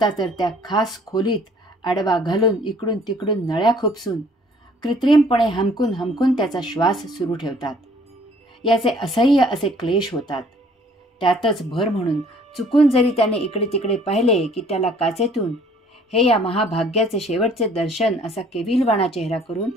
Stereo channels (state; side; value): normal; both; correlation 0.57